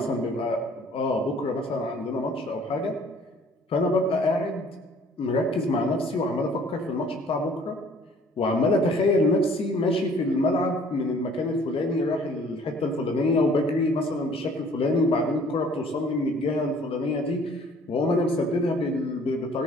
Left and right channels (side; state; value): both; normal; correlation 0.55